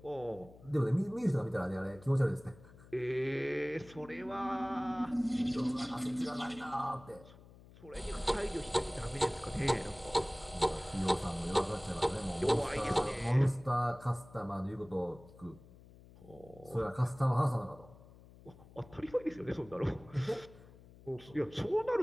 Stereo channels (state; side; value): noise; left; hum, 21 dB below the sound